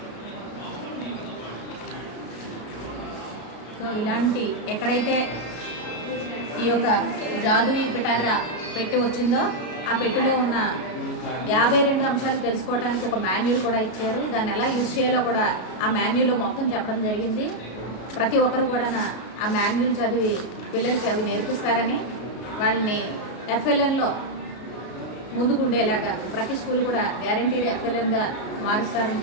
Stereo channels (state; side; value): late; right; 33 ms